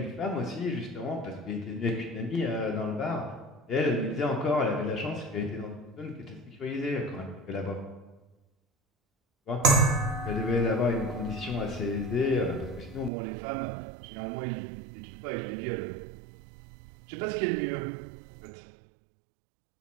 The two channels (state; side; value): drops out; left; at 13.1 s